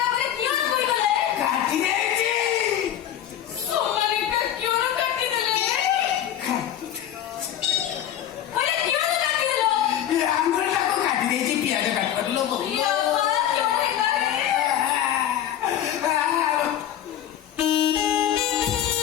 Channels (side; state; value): right; quieter; 10.8 dB